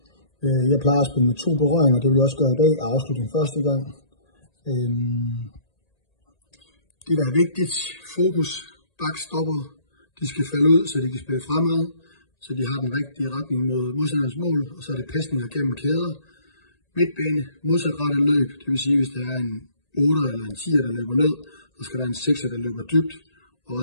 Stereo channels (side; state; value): right; late; 1.8 ms